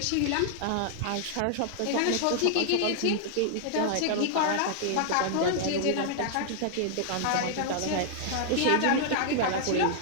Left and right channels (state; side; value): different; both; correlation -0.01